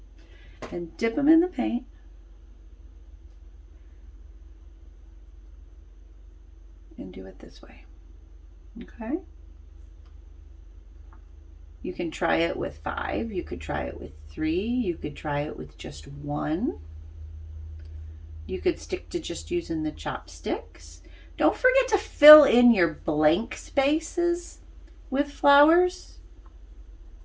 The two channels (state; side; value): identical; both; correlation 1.00